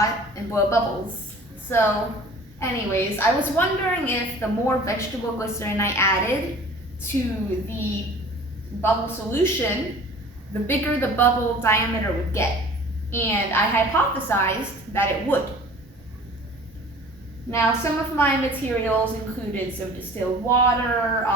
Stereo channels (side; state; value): both; normal; correlation 0.45